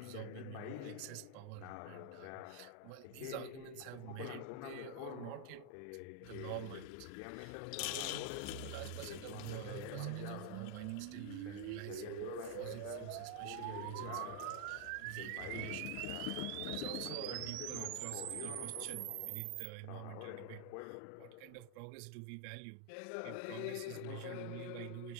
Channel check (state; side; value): different; both; correlation 0.00